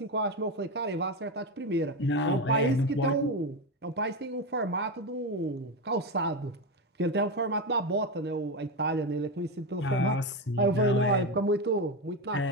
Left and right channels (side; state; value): both; normal; correlation 0.14